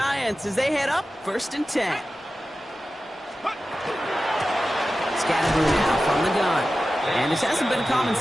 as they head up 1st and 10. Scatterboo now from the gun. And this hasn't been a common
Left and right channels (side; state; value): both; normal; correlation 0.94